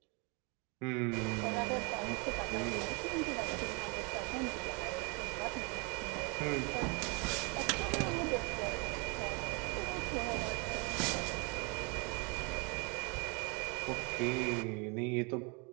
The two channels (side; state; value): left; quieter; 31.7 dB